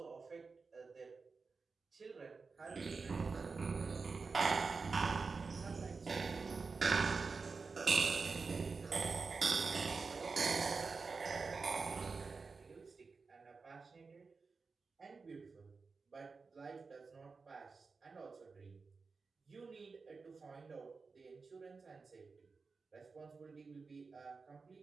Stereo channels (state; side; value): quieter; left; 4.5 dB